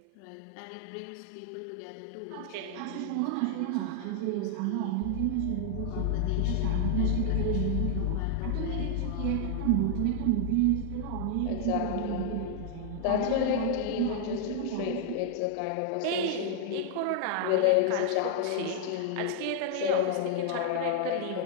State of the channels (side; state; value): both; different; correlation 0.00